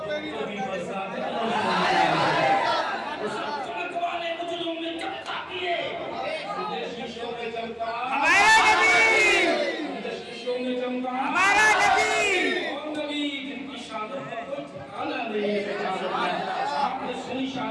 پہ بھی چمک والے مجلوں میں چمکا دیے, شیشوں میں چمکا ہمارا نبی, شیشوں میں چمکا ہمارا نبی, اور نبی جن کی شان پر ٹھکانا نہیں. آپ نے سنی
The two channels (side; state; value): both; identical; correlation 1.00